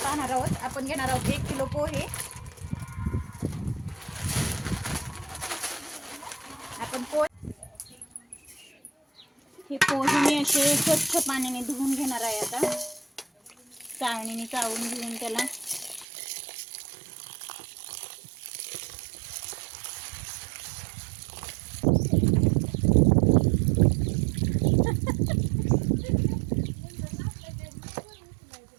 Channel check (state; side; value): drops out; left; at 16.1 s